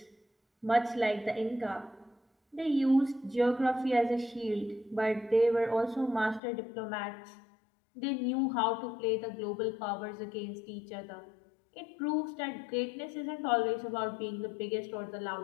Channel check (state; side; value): drops out; right; at 6.4 s